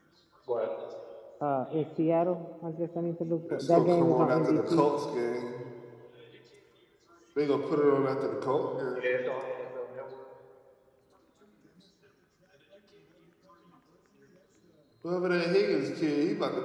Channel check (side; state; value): both; identical; correlation 1.00